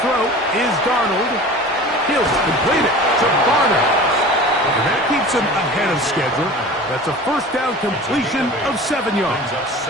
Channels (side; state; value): both; normal; correlation 0.39